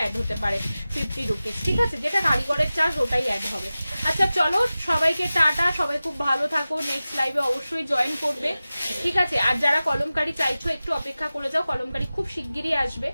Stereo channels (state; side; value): inverted; both; correlation -0.96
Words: হতে পারে 50 রুপিস, ঠিক আছে, যেটা কারিগরের চার্জ ওটাই অ্যাড হবে। আচ্ছা চলো সবাইকে টাটা, সবাই খুব ভালো থাকো, নেক্সট লাইভে অবশ্যই জয়েন করবে, ঠিক আছে। আর যারা কলমকারি চাইছো একটু অপেক্ষা করে যাও, কলমকারি খুব শিগগিরই আসবে,